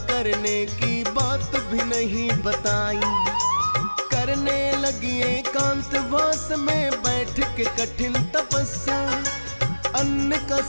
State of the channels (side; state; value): both; inverted; correlation -1.00